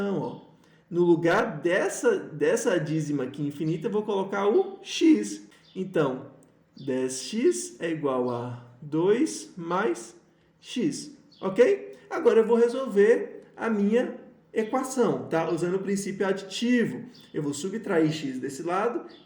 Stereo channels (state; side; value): identical; both; correlation 1.00